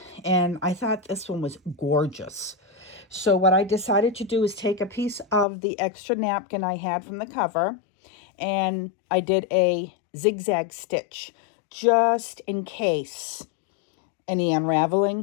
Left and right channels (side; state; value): right; drops out; at 5.5 s